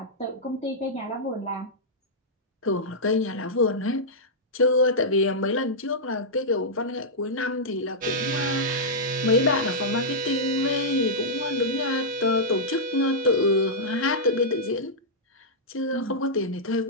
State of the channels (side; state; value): both; normal; correlation -0.10